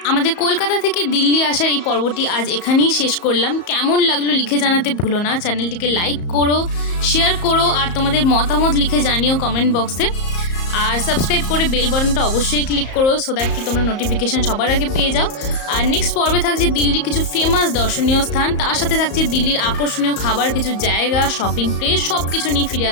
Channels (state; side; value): late; right; 34 ms